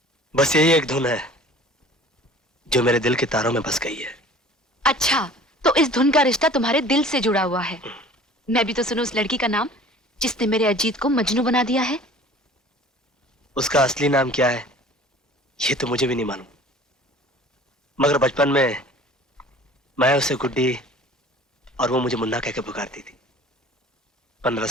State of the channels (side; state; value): both; normal; correlation 0.46